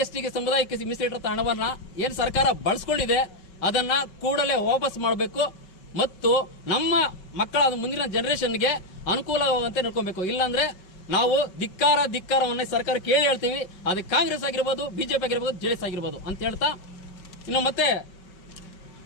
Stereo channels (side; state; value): right; late; 5.3 ms